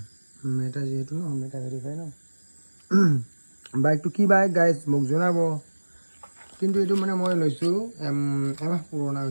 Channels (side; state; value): both; inverted; correlation -1.00